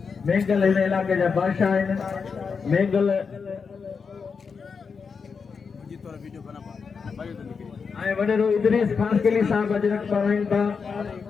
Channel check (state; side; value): quieter; right; 5.5 dB